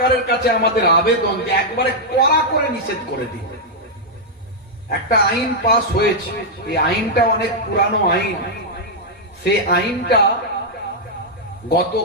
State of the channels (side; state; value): both; normal; correlation -0.05